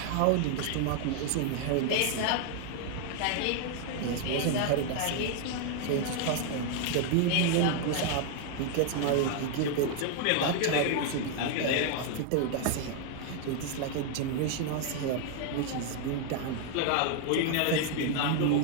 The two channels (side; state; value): both; different; correlation 0.00